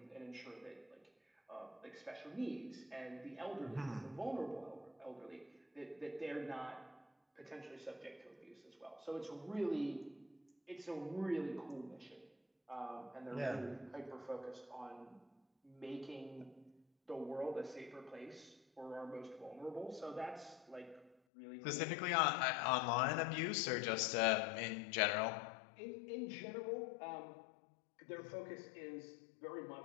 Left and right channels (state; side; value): drops out; right; at 21.2 s